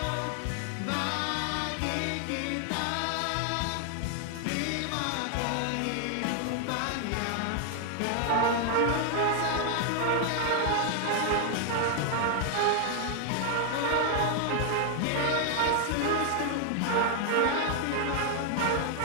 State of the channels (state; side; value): different; both; correlation 0.00